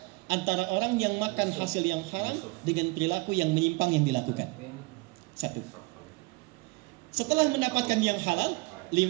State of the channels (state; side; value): quieter; left; 25.5 dB